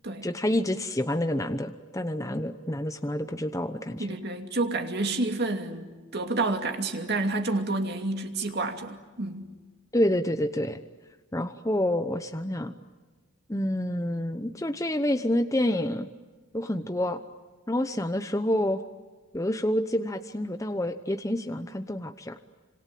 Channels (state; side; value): normal; both; correlation 0.70